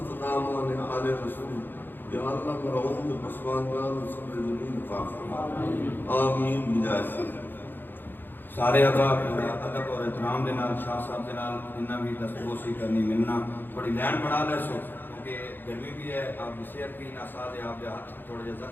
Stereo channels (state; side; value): late; right; 0.094 ms